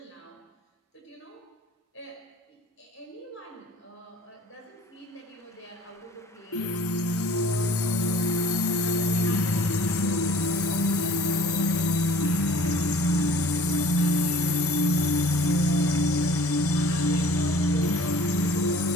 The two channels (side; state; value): both; normal; correlation 0.49